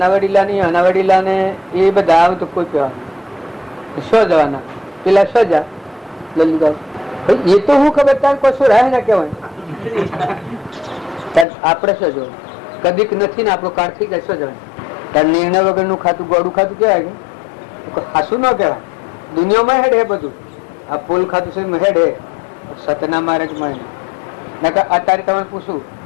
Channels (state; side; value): drops out; right; at 11.5 s